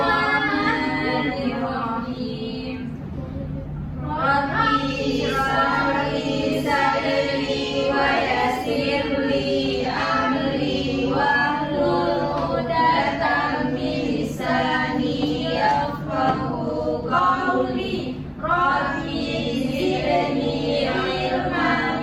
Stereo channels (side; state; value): both; identical; correlation 1.00